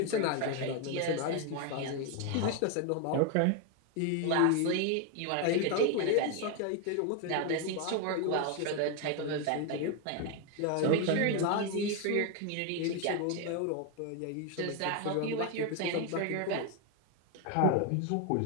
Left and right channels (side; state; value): both; different; correlation 0.01